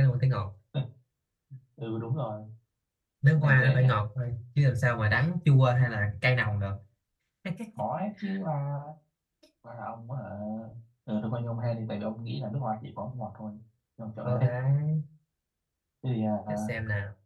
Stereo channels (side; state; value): both; identical; correlation 1.00